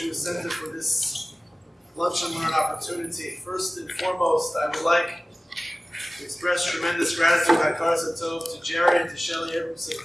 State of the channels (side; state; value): both; normal; correlation 0.97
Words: Center for this lunch and learn opportunity. First and foremost, I would like to express tremendous gratitude to Jerry and to Shelly